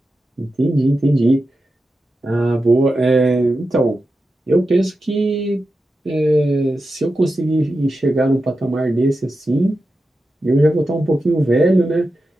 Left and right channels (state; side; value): normal; both; correlation 0.90